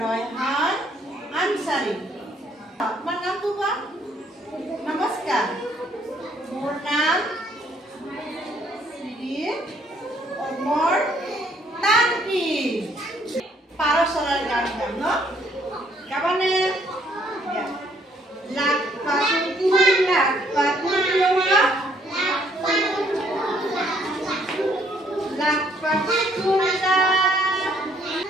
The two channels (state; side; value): normal; both; correlation 0.66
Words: ৰয়হান আনসাৰী। তোমাৰ নামটো কোৱা? নমস্কাৰ। মোৰ নাম শ্ৰী অমৰ তান্ত্ৰী। পাৰ চৰাইৰ গান গাম ন? গাবানে? লাখ পাখি লাখ পাখি লাখ পাখি কুলা